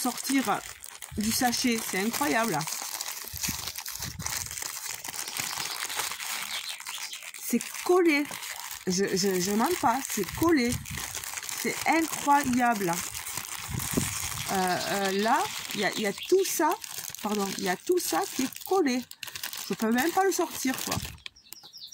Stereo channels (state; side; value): identical; both; correlation 1.00